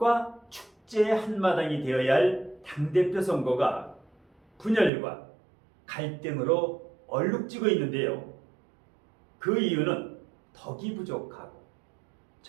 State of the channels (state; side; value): drops out; left; at 4.9 s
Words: 축제의 한마당이 되어야 할 당대표 선거가 분열과 갈등으로 얼룩지고 있는데요. 그 이유는 덕이 부족하고